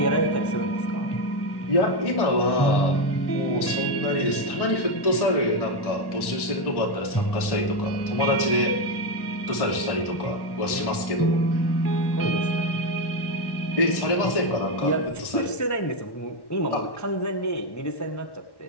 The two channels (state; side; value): late; right; 1.1 ms